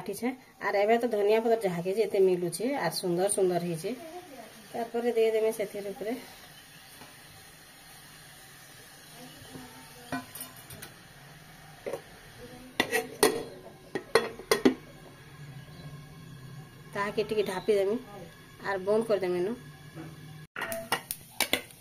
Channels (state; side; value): identical; both; correlation 1.00